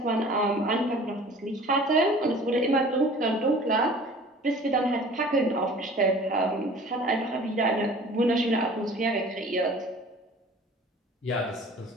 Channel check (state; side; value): normal; both; correlation 0.46